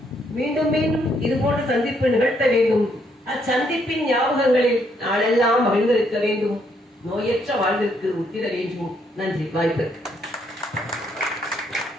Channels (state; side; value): normal; both; correlation 0.72